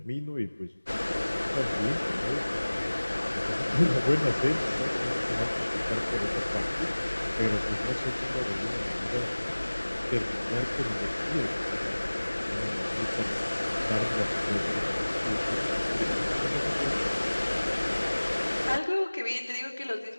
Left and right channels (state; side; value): inverted; both; correlation -1.00